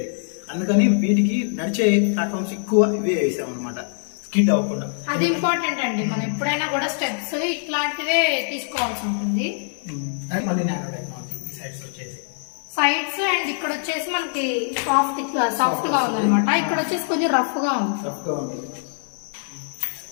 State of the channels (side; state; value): right; silent; digital silence